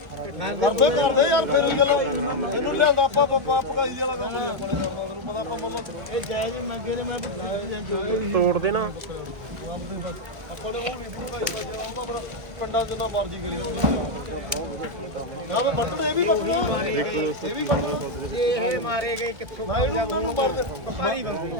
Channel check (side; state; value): left; late; 1.9 ms